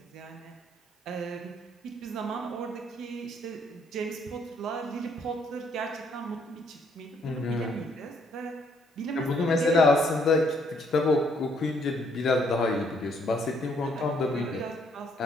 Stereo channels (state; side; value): normal; both; correlation 0.68